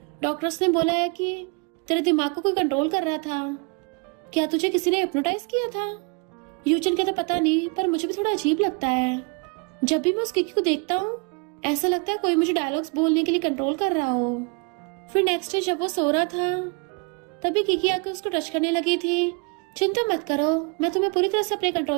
डॉक्टर्स ने बोला है कि तेरे दिमाग को कोई कंट्रोल कर रहा था, क्या तुझे किसी ने हिप्नोटाइज किया था। यूचन कहता पता नहीं, पर मुझे भी थोड़ा अजीब लगता है, जब भी मैं उस किकी को देखता हूँ ऐसा लगता है कोई मुझे डायलॉग्स बोलने के लिए कंट्रोल कर रहा हो। फिर नेक्स्ट डे जब वो सो रहा था तभी किकी आकर उसको टच करने लगी थी। चिंता मत करो, मैं तुम्हें पूरी तरह से अपने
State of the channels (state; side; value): quieter; left; 32.2 dB